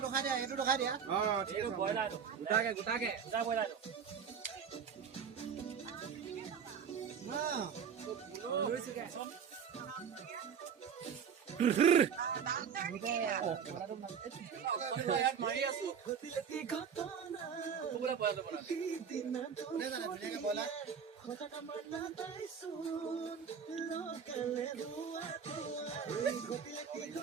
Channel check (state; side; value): quieter; left; 7.1 dB